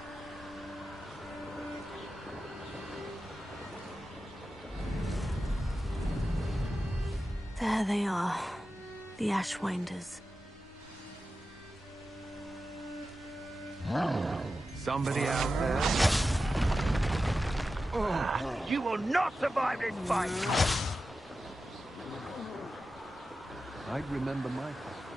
There they are, the Ashwinders. Somebody out there? You will not survive this fight! I'd remember my...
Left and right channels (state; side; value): normal; both; correlation 0.92